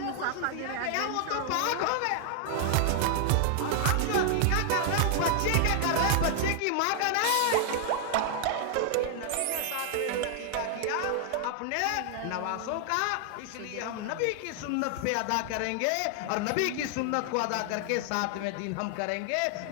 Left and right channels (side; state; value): both; different; correlation 0.00